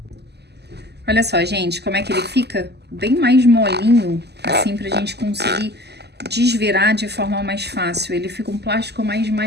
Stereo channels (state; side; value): late; left; 0.49 ms